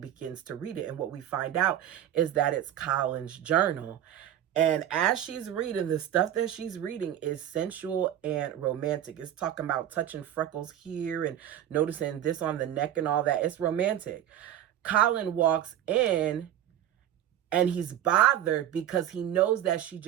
to read it. And what we find out is that it's Colin's journal. And as she's reading, the stuff that she's reading is sensual and romantic. It's talking about touching freckles here and noticing this on the neck and all that. It's romantic. Colin walks in and he's bothered because he knows that she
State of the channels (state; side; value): quieter; left; 11.2 dB